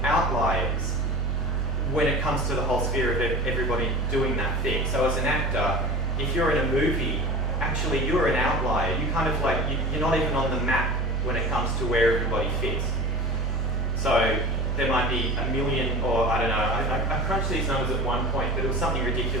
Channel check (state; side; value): normal; both; correlation 0.34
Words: outliers when it comes to the whole sphere of everybody doing that thing. So as an actor, if you're in a movie, actually you're an outlier. You kind of like, you're not even on the map when it comes to where everybody fits. So there might be 1 million, or I don't know, I crunched these numbers at one point, but it was something